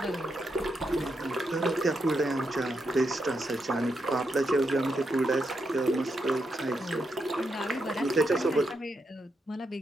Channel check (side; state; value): both; normal; correlation 0.83